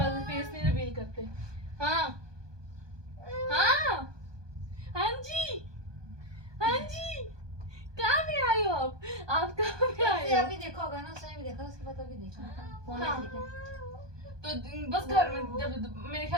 नहीं रिवील करते। हाँ हाँ हाँ जी, हाँ जी, कहाँ पे आए हो आप कहाँ पे आए से हो? अभी देखा होगा ना, उसने भी देखा, उसके बाद अभी देखा फोन में हाँ। देखा। तो बस घर में जब मेरे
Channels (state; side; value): late; left; 1.2 ms